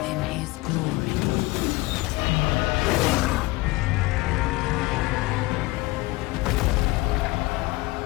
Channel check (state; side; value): quieter; right; 21.4 dB